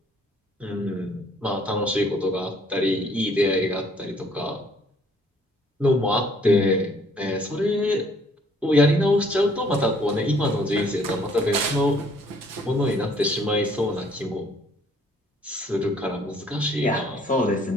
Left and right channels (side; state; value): both; normal; correlation 0.61